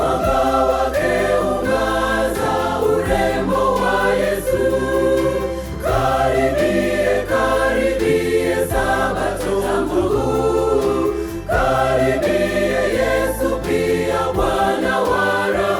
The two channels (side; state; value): both; identical; correlation 1.00